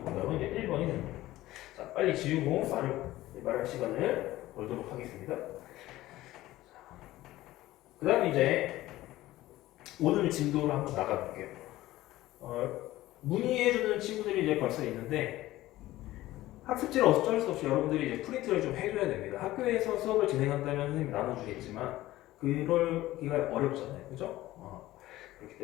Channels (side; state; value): right; quieter; 16.3 dB